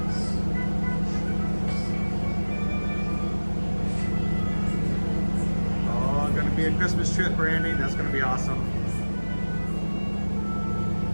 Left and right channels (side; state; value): both; inverted; correlation -1.00